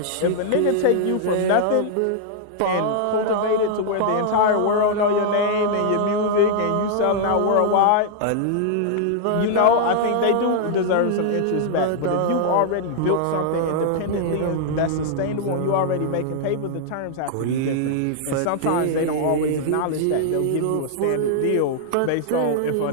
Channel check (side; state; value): both; different; correlation -0.01